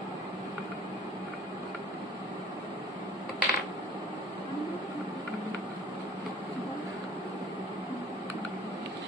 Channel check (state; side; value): normal; both; correlation 0.50